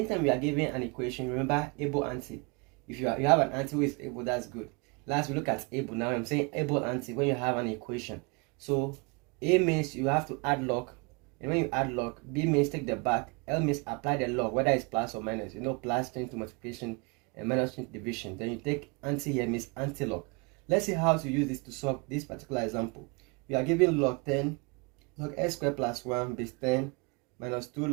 we are given an equation, remember able anti. If you have an anti who is able, that's good. Last we look at able. Now I'm saying able anti when you have an equation. So A means you have to add log, and when you add log, B means take the back, L means apply the log, whether it's plus or minus. Plus change to multiplication and minus change to division. Then you take anti here means anti-log. Let's see how to use this to solve this particular example. We are given log 10, log x squared plus 1 base 10 minus 2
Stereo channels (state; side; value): quieter; left; 30.4 dB